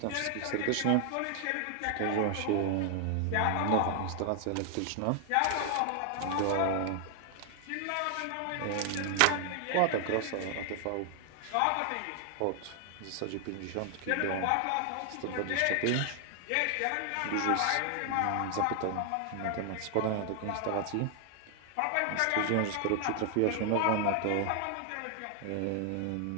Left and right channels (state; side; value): different; both; correlation 0.00